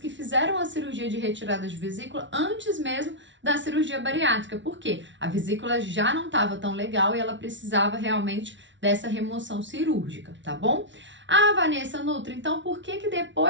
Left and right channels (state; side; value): late; left; 0.54 ms